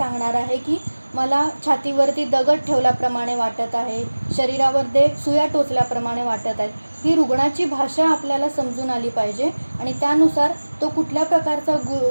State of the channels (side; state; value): both; inverted; correlation -1.00